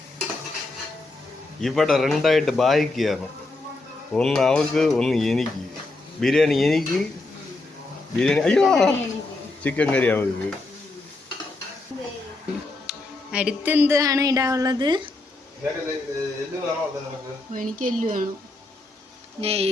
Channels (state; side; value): quieter; right; 3.1 dB